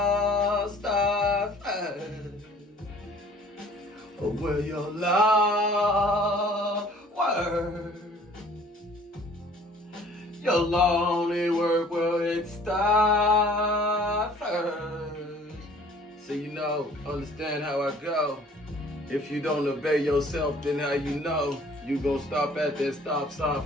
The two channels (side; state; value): both; normal; correlation 0.53